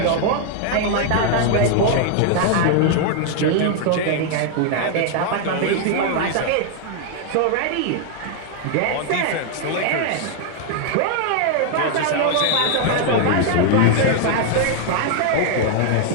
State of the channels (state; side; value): different; both; correlation 0.00